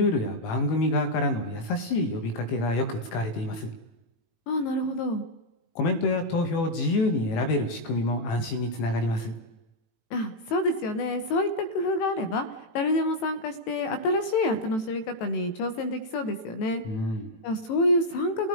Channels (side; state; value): right; late; 18 ms